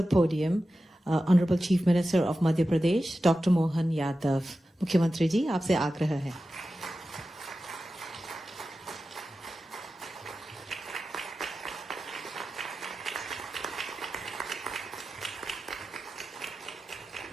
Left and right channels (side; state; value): both; normal; correlation 0.93